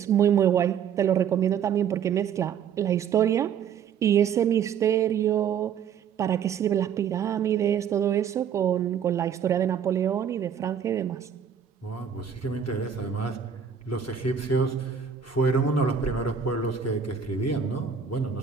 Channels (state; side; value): quieter; left; 7.7 dB